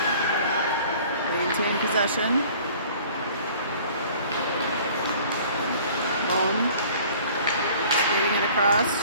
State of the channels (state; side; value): inverted; both; correlation -0.50